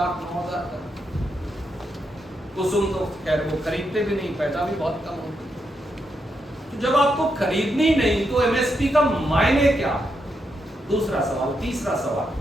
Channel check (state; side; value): normal; both; correlation 0.82